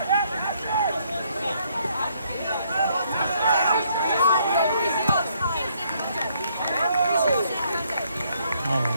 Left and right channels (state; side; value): inverted; both; correlation -0.69